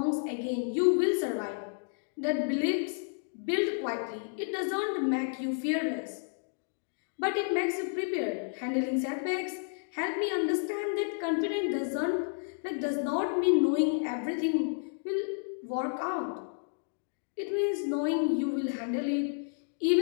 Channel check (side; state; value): right; silent; digital silence